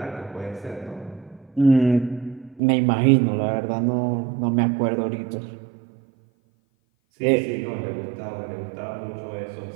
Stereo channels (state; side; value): drops out; left; at 2.6 s